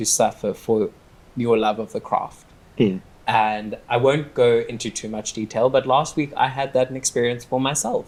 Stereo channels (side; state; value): both; identical; correlation 1.00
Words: suffer for your love of the craft. And I won't go into too much detail, but last week I had that experience for myself